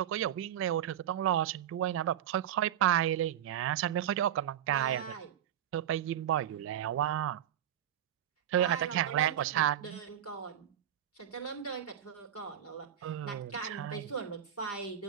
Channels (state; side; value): quieter; left; 10.7 dB